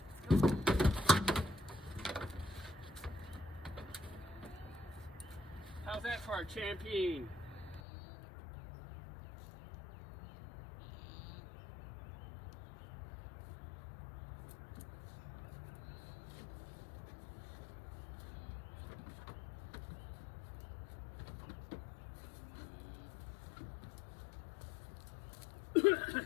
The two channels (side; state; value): right; drops out; at 7.8 s